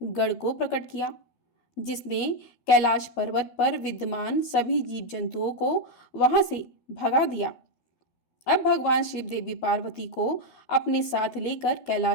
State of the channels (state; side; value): late; right; 12 ms